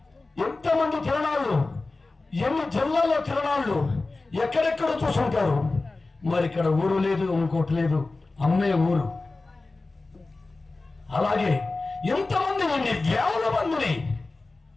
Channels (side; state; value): right; quieter; 3.4 dB